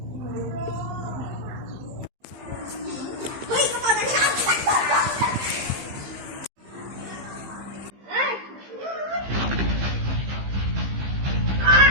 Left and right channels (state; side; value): late; left; 15 ms